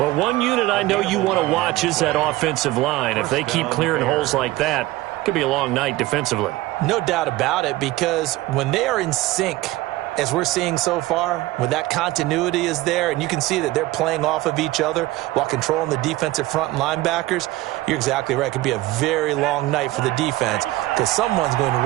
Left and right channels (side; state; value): left; quieter; 18.0 dB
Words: one unit I know you want to watch is that offensive line. If they keep clearing holes like that, it could be a long night defensively. No doubt about it, because when they are in sync, as we're seeing so far, when that continuity is there and you can see that they're playing off of each other while controlling the defensive front and linebackers, you're exactly right. It could be a very long night for the defense because someone's going to